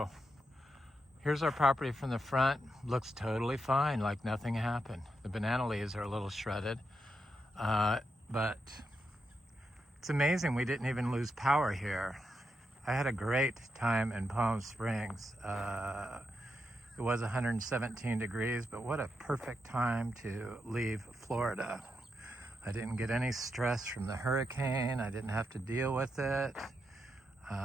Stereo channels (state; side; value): normal; both; correlation 0.84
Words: here's our property from the front. Looks totally fine, like nothing happened. The banana leaves are a little shredded, but it's amazing we didn't even lose power here. I had a great time in Palm Springs. It was 117 degrees, but what a perfect time to leave Florida. I didn't get any stress from the hurricane. I didn't have to deal with it.